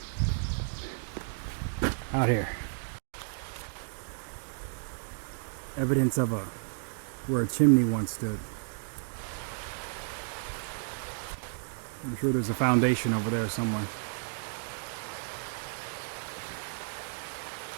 out here. Evidence of where a chimney once stood. I'm sure there's a foundation over there somewhere.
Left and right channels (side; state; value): left; silent; digital silence